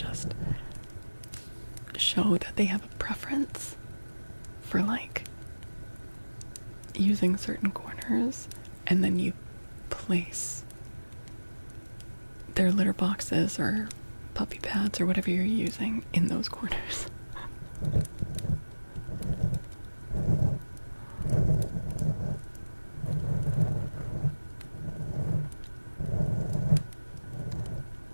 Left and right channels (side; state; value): both; inverted; correlation -1.00